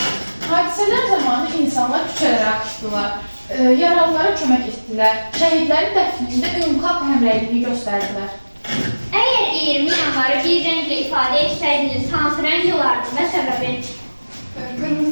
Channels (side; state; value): both; inverted; correlation -1.00